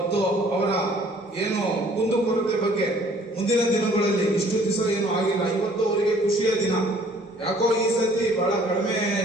ಅವರ ಏನು ಕುಂದುಕೊರತೆ ಬಗ್ಗೆ ಮುಂದಿನ ದಿನಗಳಲ್ಲಿ ಇಷ್ಟು ದಿವಸ ಏನು ಆಗಿಲ್ಲ, ಇವತ್ತು ಅವರಿಗೆ ಖುಷಿಯ ದಿನ. ಯಾಕೋ ಈ ಸತಿ ಬಹಳ ಕಡಿಮೆ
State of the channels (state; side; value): normal; both; correlation 0.57